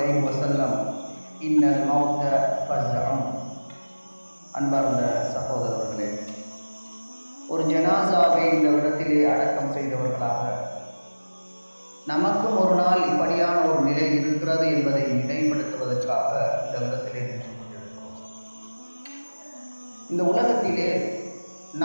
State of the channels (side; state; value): both; inverted; correlation -1.00